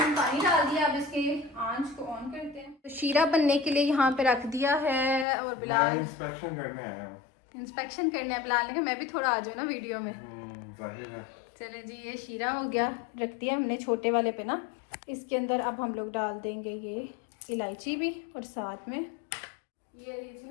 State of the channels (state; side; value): drops out; right; at 5.2 s